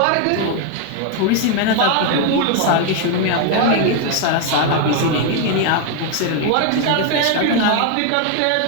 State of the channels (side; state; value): both; different; correlation 0.01